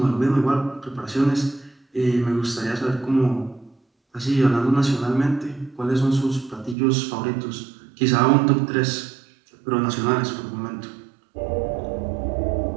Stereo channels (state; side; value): drops out; left; at 6.8 s